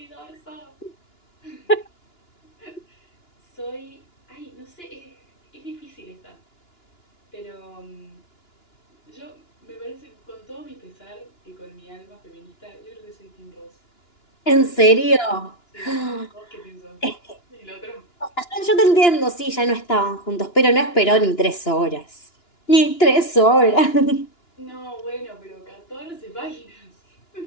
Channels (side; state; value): right; late; 2.9 ms